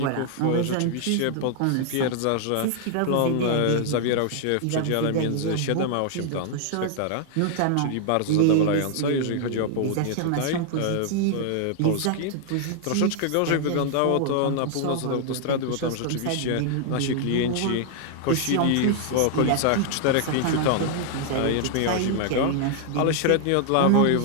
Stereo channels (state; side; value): different; both; correlation 0.00